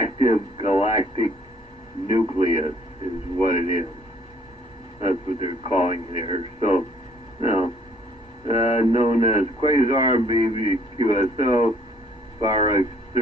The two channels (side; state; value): both; normal; correlation 0.61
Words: galactic nucleus is what it is. That's what they're calling it here. So, you know, known as quasar, BBQSO, far